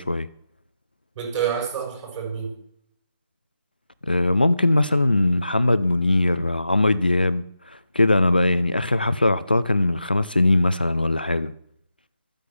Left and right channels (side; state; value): both; inverted; correlation -0.90